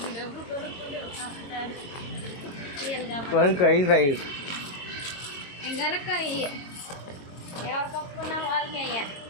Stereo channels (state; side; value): late; right; 22 ms